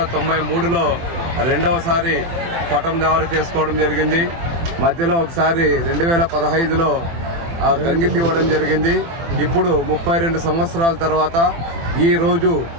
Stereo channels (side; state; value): left; late; 24 ms